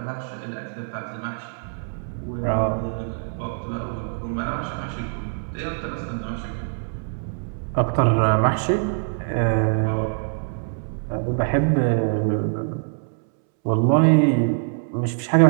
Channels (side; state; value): left; silent; 63 dB below the other